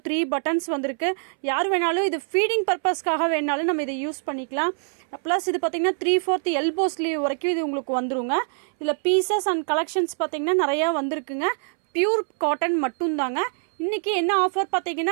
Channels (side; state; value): left; silent; 62 dB below the other